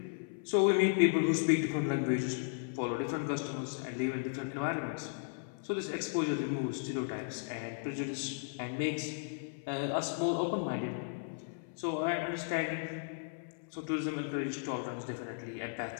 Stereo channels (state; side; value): silent; right; 54 dB below the other